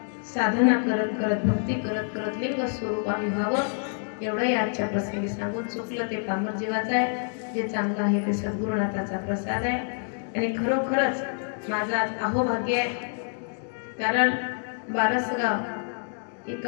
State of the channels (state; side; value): silent; right; 60 dB below the other